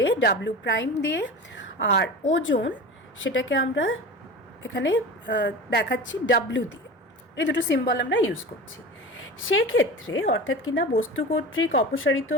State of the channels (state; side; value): normal; both; correlation 0.32